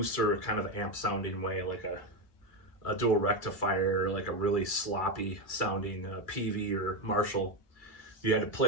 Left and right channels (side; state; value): right; late; 2.4 ms